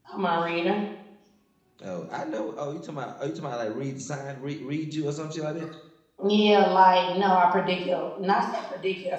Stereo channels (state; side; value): identical; both; correlation 1.00